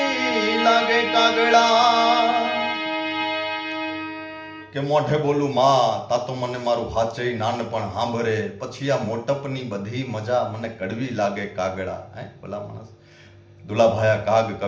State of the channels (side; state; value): both; identical; correlation 1.00